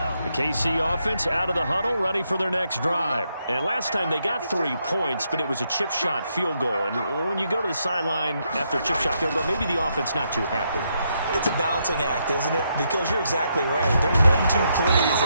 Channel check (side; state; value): both; inverted; correlation -0.79